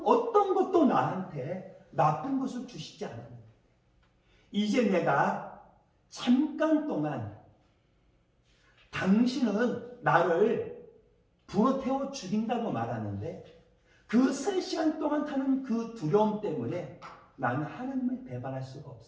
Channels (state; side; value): identical; both; correlation 1.00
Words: 어떤 것도 나한테 나쁜 것을 주시지 않았는데 이제 내가 잠깐 동안 당신은 나를 불어 태워 죽인다고 말하는데 그 3시간 동안 타는 그 두려움 때문에 나는 하나님을 배반할 수가